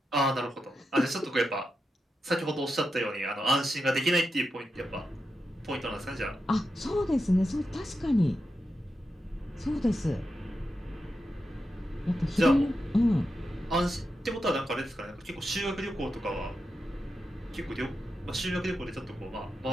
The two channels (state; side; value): normal; both; correlation 0.88